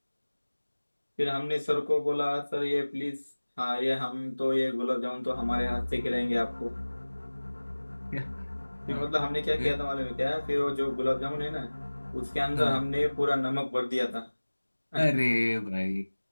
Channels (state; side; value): inverted; both; correlation -1.00